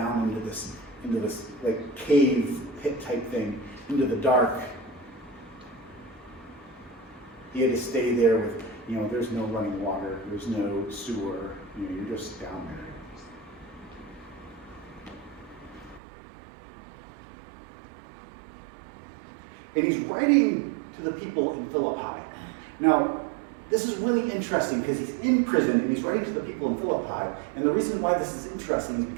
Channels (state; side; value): drops out; left; at 16.0 s